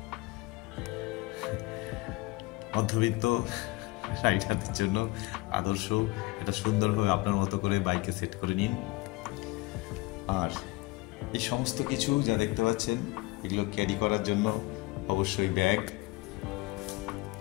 মধ্যবিত্ত রাইডারদের জন্য আদর্শ, এটা সুন্দরভাবে আপনার মতো করে বাইকে সেট করে নিন। আর এই সমস্ত কিছু যা দেখতে পাচ্ছেন এগুলো ক্যারি করার জন্য অবশ্যই ব্যাগ,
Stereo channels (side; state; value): right; quieter; 22.3 dB